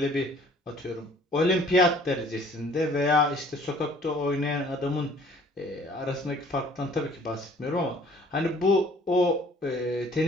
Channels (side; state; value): both; normal; correlation 0.55